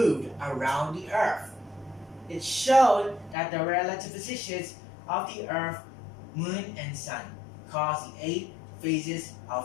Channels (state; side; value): drops out; right; at 3.4 s